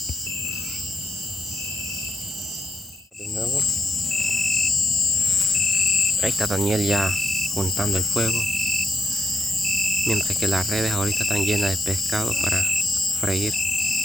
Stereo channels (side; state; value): both; normal; correlation 0.84